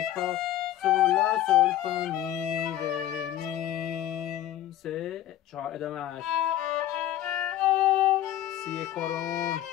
فا سول لا سول فا می ره می 3 4 ادامهش سی کرون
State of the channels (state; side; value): quieter; right; 12.7 dB